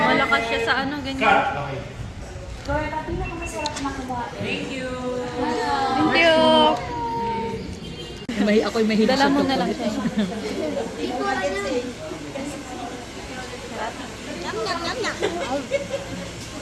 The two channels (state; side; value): identical; both; correlation 1.00